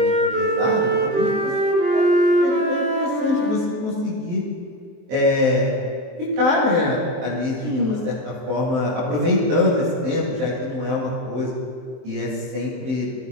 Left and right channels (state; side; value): late; left; 23 ms